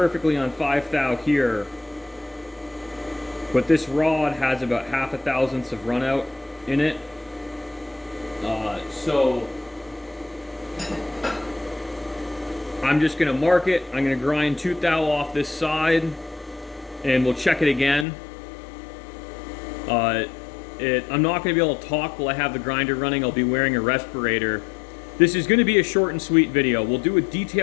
on 5 thou here, but this rod has about 0.5 of run out in it. So I'm just going to mark it. I'm going to grind 2 thou off this side, and we'll check it again. I'm not going to be able to talk while I have the grinder running. I'll be wearing a respirator. This is going to be a short and sweet video. We'll do a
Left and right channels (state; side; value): drops out; right; at 18.1 s